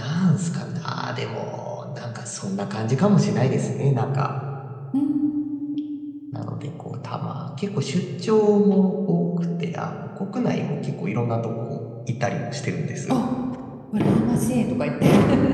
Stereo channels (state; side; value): identical; both; correlation 1.00